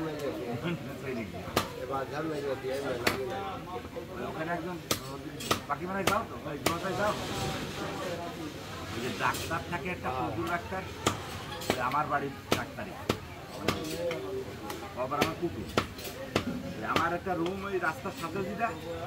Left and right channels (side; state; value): both; identical; correlation 1.00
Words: ওখানে একদম বাকি মানে যাও তো যাও ওই যে ডাক্তার থাকে একটা কুকুর ডাক্তার আমার বাড়ির ডাক্তারই আবার আমার কুকুর আমার একটা রুম ওই রাস্তার সাথে যেটা